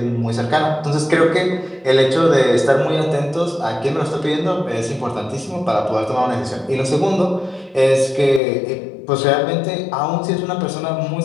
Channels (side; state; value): right; drops out; at 8.4 s